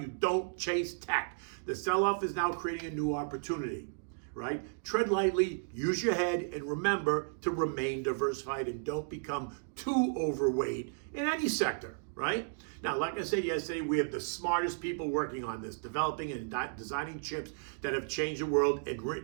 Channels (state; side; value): silent; left; digital silence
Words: don't chase tech. The sell-off is now creating a new opportunity, right? Tread lightly, use your head, and remember to remain diversified and don't become too overweight in any sector, right? Now, like I said yesterday, we have the smartest people working on this, developing and designing chips that have changed the world and